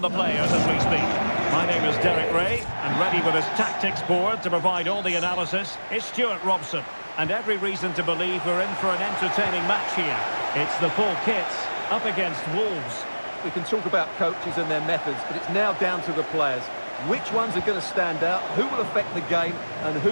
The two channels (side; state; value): both; inverted; correlation -1.00